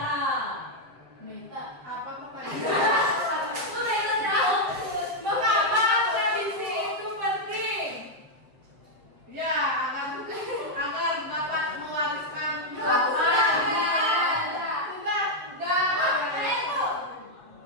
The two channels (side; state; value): left; late; 7.3 ms